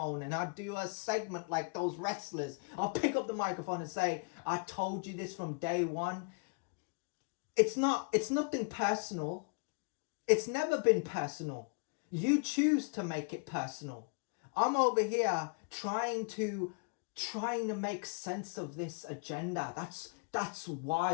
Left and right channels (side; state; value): right; quieter; 38.5 dB